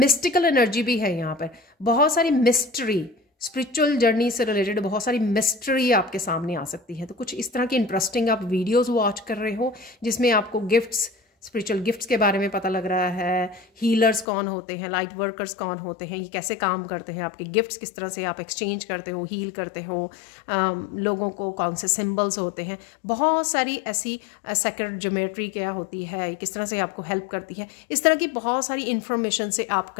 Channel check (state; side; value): drops out; right; at 14.2 s